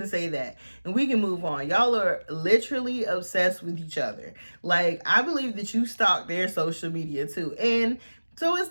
to say that. And we can move on. Y'all are literally obsessed with each other. Like, I believe that you stalk their social media too. And so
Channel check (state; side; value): inverted; both; correlation -1.00